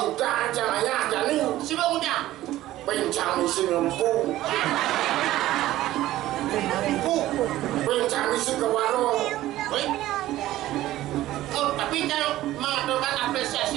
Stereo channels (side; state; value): left; quieter; 15.1 dB